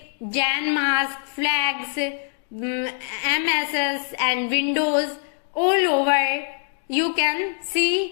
Jan mask, flags, MSS and Windows all over. You can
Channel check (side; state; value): right; silent; digital silence